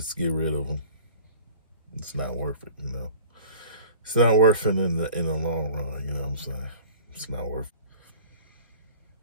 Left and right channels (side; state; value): both; inverted; correlation -0.44